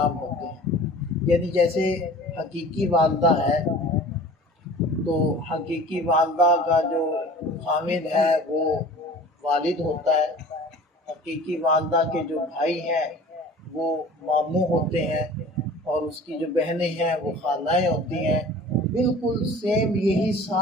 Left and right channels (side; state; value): both; normal; correlation 0.43